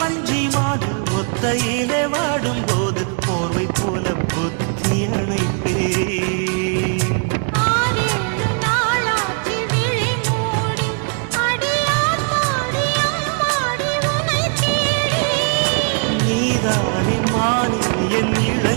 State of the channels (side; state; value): left; quieter; 39.6 dB